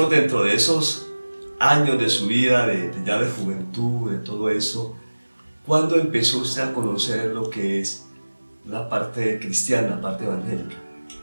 dentro de esos años de su vida, ya de juventud, de todo eso, ¿cuándo empezó usted a conocer lo que es la parte cristiana, la parte evangélica?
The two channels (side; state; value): both; inverted; correlation -1.00